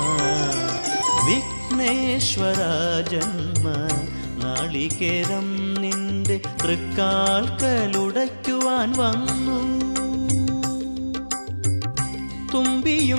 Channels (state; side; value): inverted; both; correlation -1.00